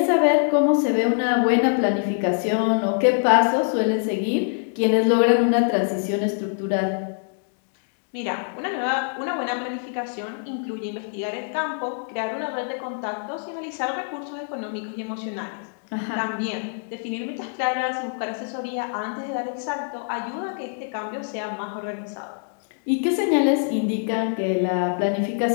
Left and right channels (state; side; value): silent; right; digital silence